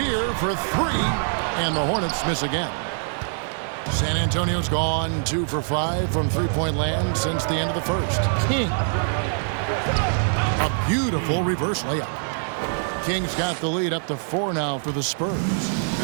for 3. And the Hornets miss again. San Antonio's gone 2 for 5 from three-point land since the end of the first. King. A beautiful reverse layup. King's got the lead up to 4 now for the Spurs.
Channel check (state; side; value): silent; left; 63 dB below the other